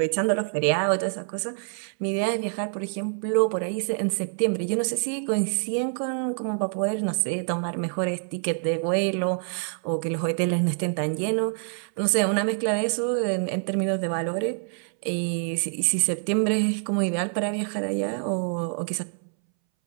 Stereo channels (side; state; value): left; silent; 61 dB below the other